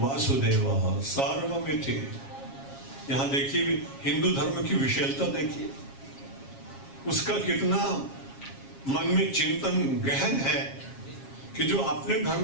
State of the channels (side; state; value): right; late; 7.4 ms